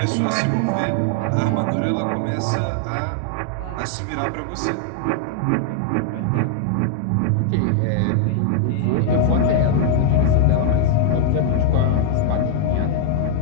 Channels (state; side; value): different; both; correlation 0.00